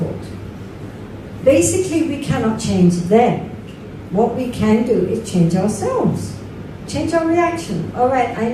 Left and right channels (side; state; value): both; identical; correlation 1.00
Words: Basically, we cannot change them. What we can do is change ourselves. Change our reaction. All right, I